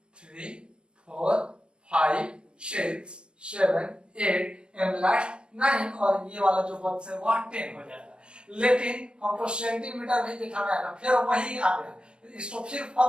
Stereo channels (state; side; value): late; left; 0.056 ms